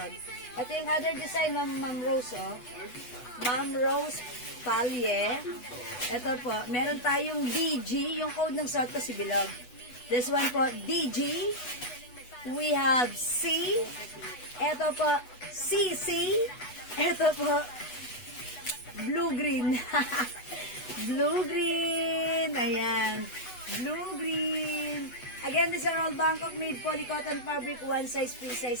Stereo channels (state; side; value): late; right; 8.1 ms